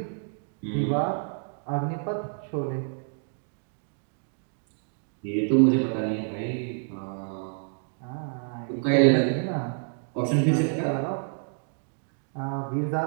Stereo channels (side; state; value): left; silent; 59 dB below the other